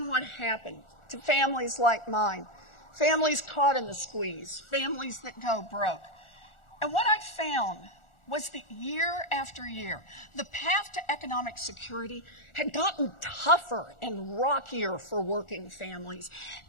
what happened to families like mine, families caught in the squeeze, families that go broke. And what I found was that year after year, the path to economic security had gotten tougher and rockier for working families,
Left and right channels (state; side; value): late; right; 1.4 ms